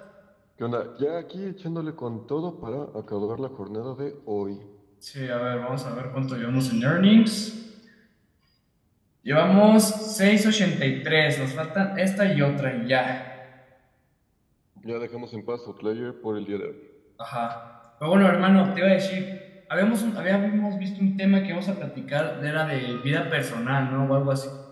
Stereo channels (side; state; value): both; identical; correlation 1.00